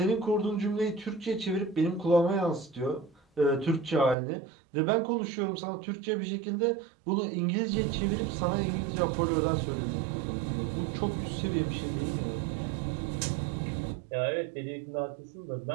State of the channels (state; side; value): drops out; left; at 4.2 s